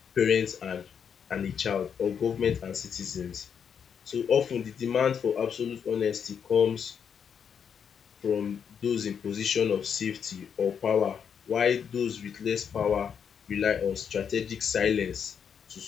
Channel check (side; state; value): right; quieter; 7.4 dB